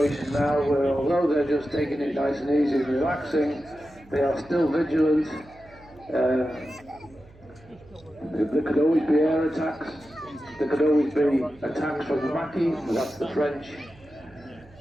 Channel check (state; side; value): noise; right; hum, 25 dB below the sound